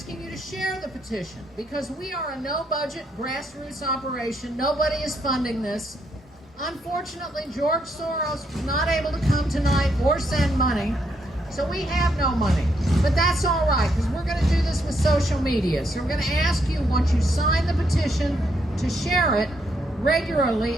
you to share the petition because we are a no-budget grassroots operation. Nobody is funding this. Unfortunately, George Soros was not able to come tonight or send money, so we have no money. But that's all right, because we're going to do this with social media. So we're going to ask you, once you sign the petition, to share it regularly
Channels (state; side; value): normal; both; correlation 0.76